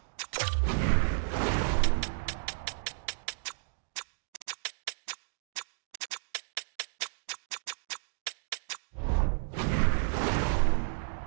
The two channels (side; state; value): left; silent; digital silence